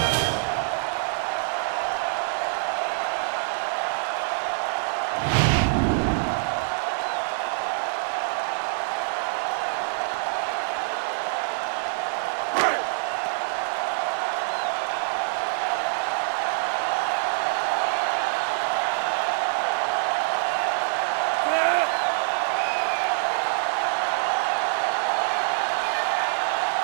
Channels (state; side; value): silent; left; digital silence